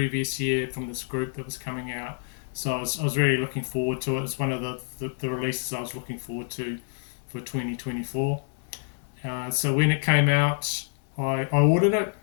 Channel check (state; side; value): silent; right; 60 dB below the other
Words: year from this group that was coming out. So I was really looking forward to it. It's one of the releases I was looking forward to for 2024. So when it came out, I ordered it.